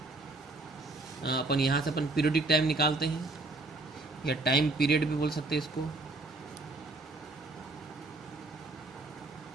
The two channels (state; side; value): quieter; left; 3.1 dB